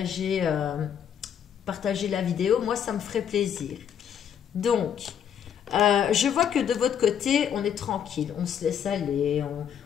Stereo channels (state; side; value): quieter; right; 8.7 dB